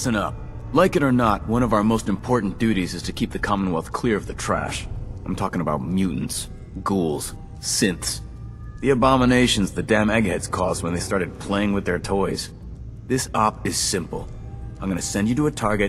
up. Like it or not, one of our most important duties is to keep the Commonwealth clear of the trash. I'm talking about mutants, ghouls, synths. The abominations the damn eggheads caused when they started playing with their toys. This op is simple. I'm gonna send you to a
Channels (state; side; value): identical; both; correlation 1.00